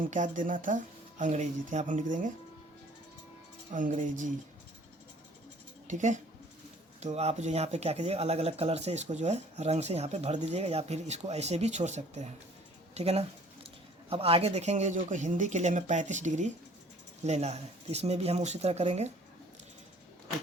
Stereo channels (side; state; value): both; normal; correlation 0.54